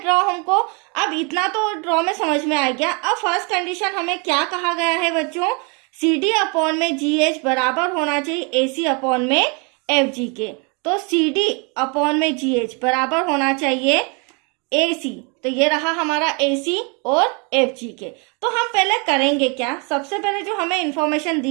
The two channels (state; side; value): quieter; left; 32.9 dB